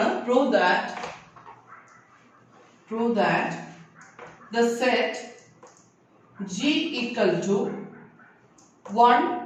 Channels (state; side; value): identical; both; correlation 1.00